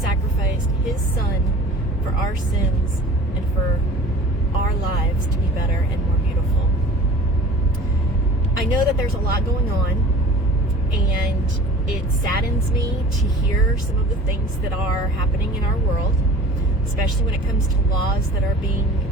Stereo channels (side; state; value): both; normal; correlation 0.43